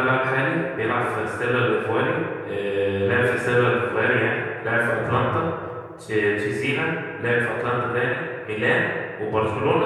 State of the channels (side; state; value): both; identical; correlation 1.00